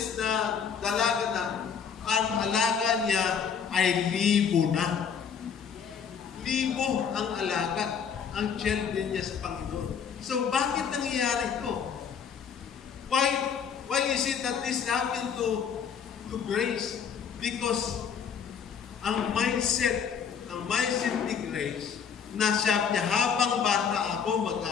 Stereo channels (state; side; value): quieter; right; 7.1 dB